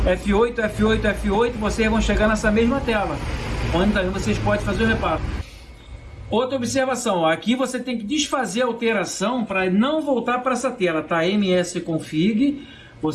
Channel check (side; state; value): both; identical; correlation 1.00